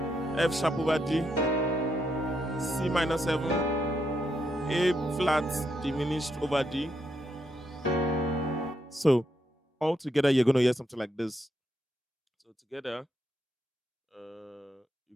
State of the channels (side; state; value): both; normal; correlation 0.79